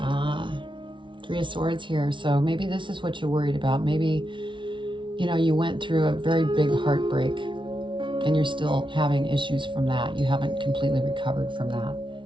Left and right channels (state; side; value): late; left; 0.24 ms